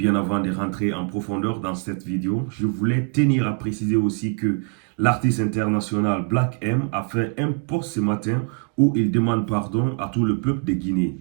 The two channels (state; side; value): quieter; left; 37.2 dB